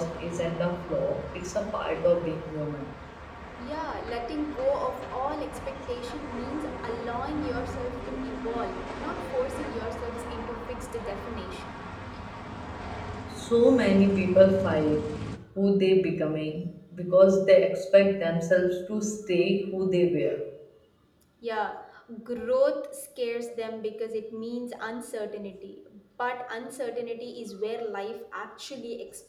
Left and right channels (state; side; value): identical; both; correlation 1.00